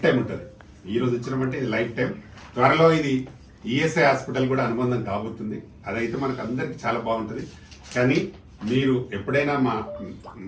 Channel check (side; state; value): both; identical; correlation 1.00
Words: టైం ఉంటుంది. ఈ రోజు ఇచ్చినామంటే ఇది లైఫ్ టైం. త్వరలో ఇది ఈఎస్ఐ హాస్పిటల్ కూడా అనుబంధం కాబోతుంది. అదైతే మనకు అందరికి చాలా బాగుంటుంది. కానీ మీరు ఎప్పుడైనా మా